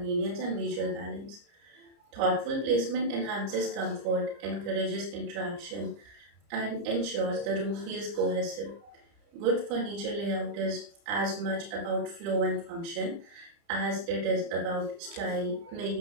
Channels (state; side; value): late; left; 30 ms